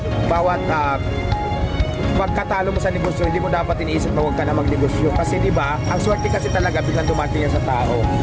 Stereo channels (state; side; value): identical; both; correlation 1.00